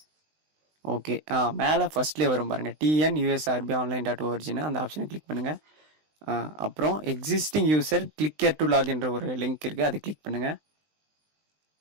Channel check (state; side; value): late; left; 20 ms